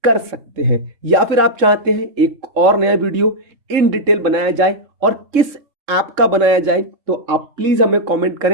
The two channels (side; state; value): left; late; 3.7 ms